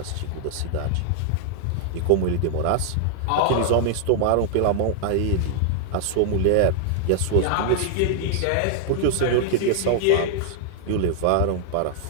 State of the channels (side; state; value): both; different; correlation 0.00